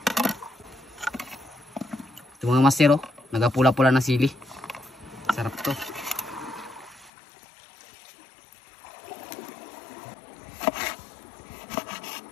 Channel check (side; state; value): right; drops out; at 7.1 s